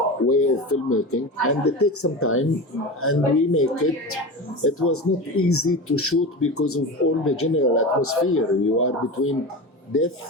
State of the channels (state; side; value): normal; both; correlation 0.26